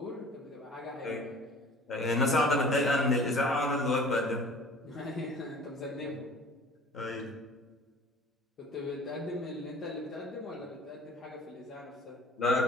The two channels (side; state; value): both; normal; correlation 0.47